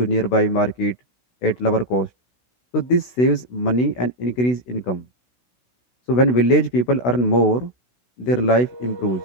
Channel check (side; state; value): right; late; 16 ms